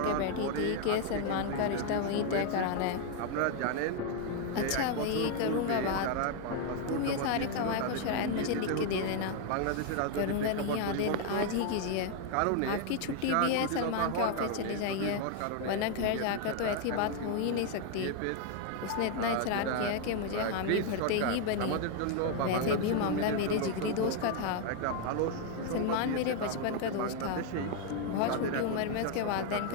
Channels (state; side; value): different; both; correlation 0.00